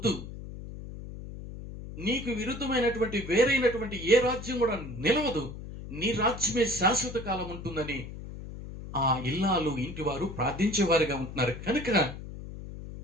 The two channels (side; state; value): left; noise; hum, 11 dB below the sound